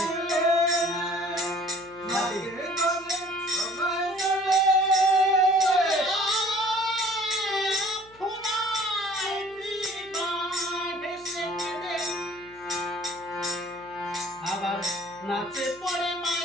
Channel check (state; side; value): noise; left; hum, 26 dB below the sound